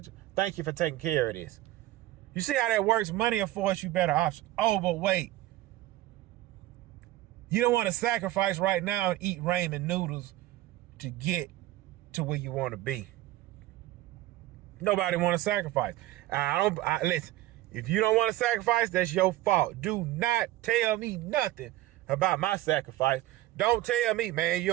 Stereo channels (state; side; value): quieter; left; 16.3 dB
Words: Thank you for taking care of this. You see how that works? Money affords you better options. Oh, but wait. You don't want to sacrifice right now and eat ramen noodles to get to where you want to be. Nobody want to sacrifice. Listen, if you don't want to sacrifice, that's your fault. Do not tell me nothing about my sacrifice. Don't tell me, man, you